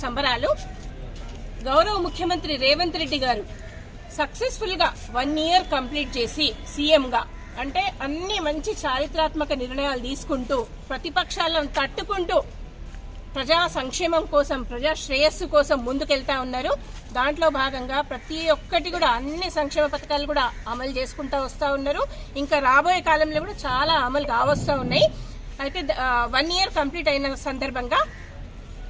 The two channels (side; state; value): both; identical; correlation 1.00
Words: సంబరాలు గౌరవ ముఖ్యమంత్రి రేవంత్ రెడ్డి గారు సక్సెస్ఫుల్ గా 1 ఇయర్ కంప్లీట్ చేసి సీఎం గా అంటే అన్ని మంచి చారిత్రాత్మక నిర్ణయాలు తీసుకుంటూ ప్రతిపక్షాలను తట్టుకుంటూ ప్రజా సంక్షేమం కోసం ప్రజా శ్రేయస్సు కోసం ముందుకెళ్తా ఉన్నారు. దాంట్లో భాగంగా ప్రతి ఒక్కటి కూడా అన్ని సంక్షేమ పథకాలు కూడా అమలు చేసుకుంటూ వస్తూ ఉన్నారు. ఇంకా రాబోయే కాలంలో కూడా చాలా అమలు కావస్తూ ఉన్నాయి. అయితే 1 ఇయర్ కంప్లీట్ అయిన సందర్భంగా